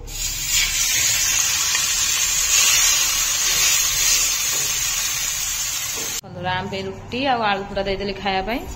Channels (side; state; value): both; identical; correlation 1.00